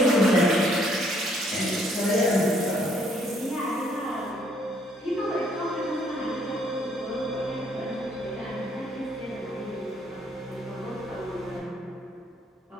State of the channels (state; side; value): normal; both; correlation 0.66